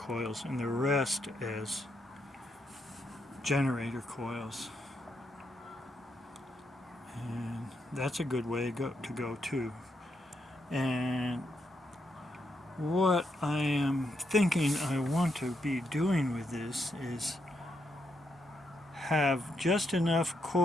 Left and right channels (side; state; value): both; normal; correlation 0.80